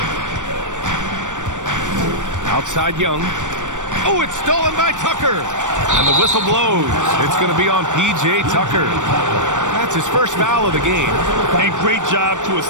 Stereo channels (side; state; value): left; late; 0.86 ms